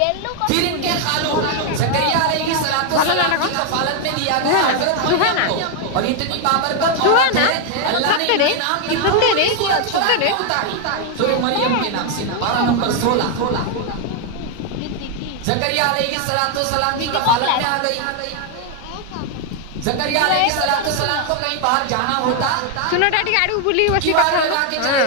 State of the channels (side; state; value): both; different; correlation 0.01